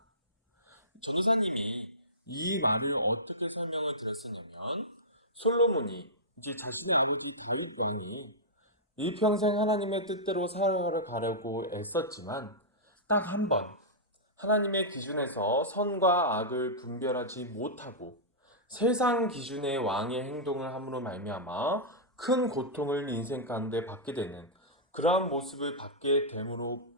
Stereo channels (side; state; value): both; normal; correlation -0.14